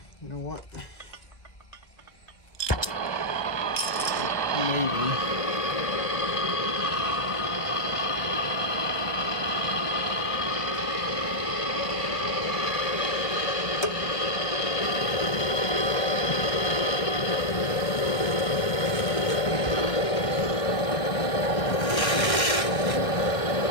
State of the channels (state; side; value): late; right; 1.9 ms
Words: you know what? Maybe.